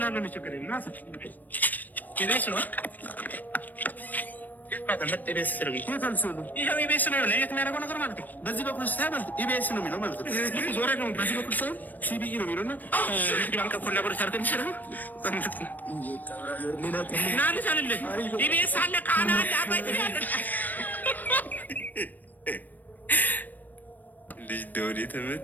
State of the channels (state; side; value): late; right; 0.085 ms